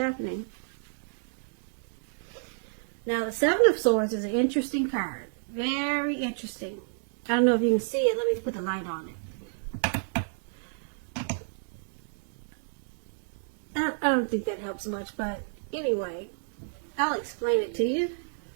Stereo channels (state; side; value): silent; left; digital silence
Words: Now, the Seven of Swords is an interesting card. Very interesting. I don't know if you can see it. Let me put the light on it. I don't think that helps much, but anyway, I'll explain it to you.